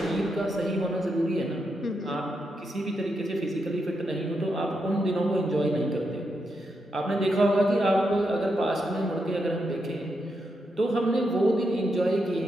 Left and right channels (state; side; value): normal; both; correlation 0.83